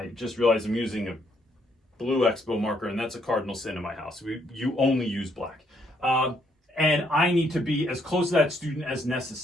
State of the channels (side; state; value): both; normal; correlation 0.71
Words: just realized I'm using a blue Expo marker, and that's a cardinal sin in my house. You only use black. And I need to be as close to that student as